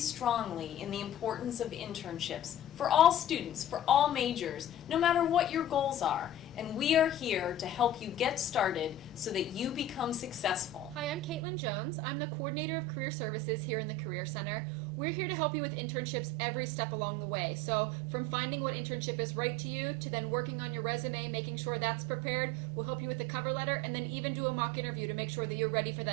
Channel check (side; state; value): left; drops out; at 11.4 s